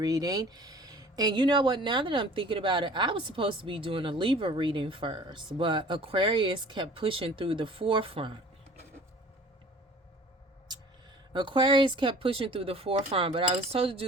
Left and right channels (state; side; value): normal; both; correlation 0.47